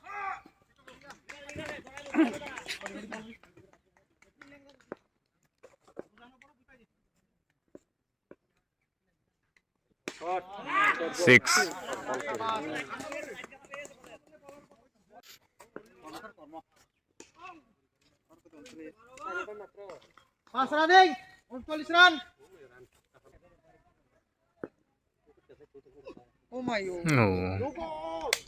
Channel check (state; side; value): identical; both; correlation 1.00